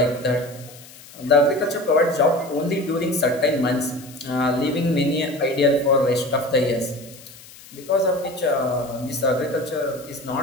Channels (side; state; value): left; noise; hiss, 20 dB below the sound